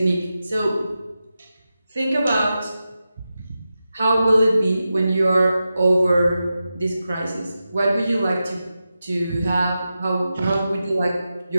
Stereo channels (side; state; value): both; inverted; correlation -0.91